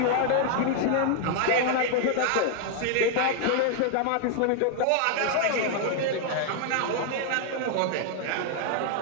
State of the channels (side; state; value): both; different; correlation 0.00